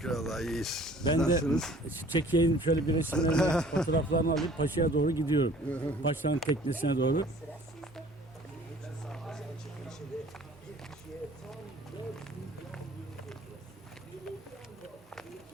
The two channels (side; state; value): both; normal; correlation 0.52